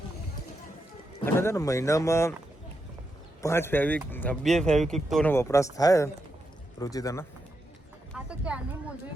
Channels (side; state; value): both; normal; correlation 0.84